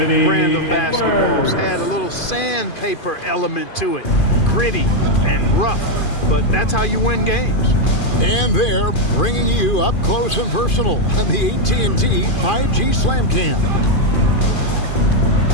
of basketball. It's had a little sandpaper element to it. Gritty and rough, but that's how you win games. And they're bringing you up close and personal on the AT&T 5G Slam Cam.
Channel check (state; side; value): late; right; 2.4 ms